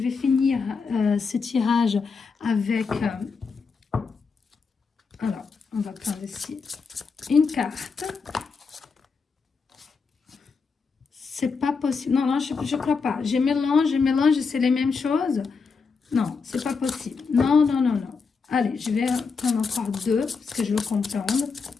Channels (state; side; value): quieter; right; 5.0 dB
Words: finir ce tirage avec... alors, on va prendre ici une carte. C'est pas possible. Non, non, je crois pas. Je mélange, c'est les mêmes choses. Non, c'est pas possible. Non, non, non, non. Allez, je vais prendre encore deux, parce que je veux comprendre.